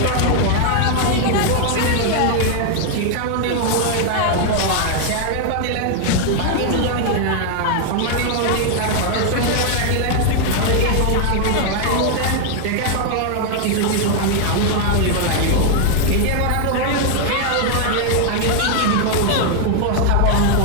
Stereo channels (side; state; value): both; different; correlation 0.00